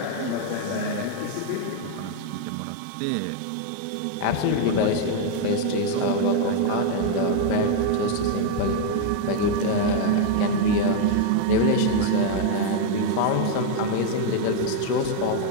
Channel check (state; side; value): different; both; correlation 0.00